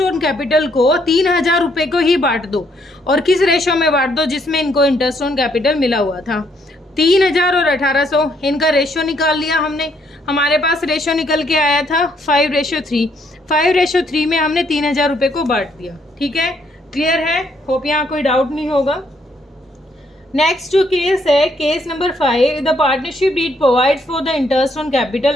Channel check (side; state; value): both; normal; correlation 0.71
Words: ऑन कैपिटल को 3,000 रुपये को ही बांट दो। और किस रेशो में बांट दो, जिसमें इनको इंटरेस्ट ऑन कैपिटल मिला हुआ था। 3,000 और 1800, इनका रेशो निकाल लिया हमने। हमारे पास रेशो निकल के आया था 5:3। 5:3 में हमने 3,000 रुपये को बांट दिया। ठीक है, क्लियर है? होप यहाँ कोई डाउट नहीं होगा। नेक्स्ट जो केस है, case number 5, the partnership deed provides for the interest on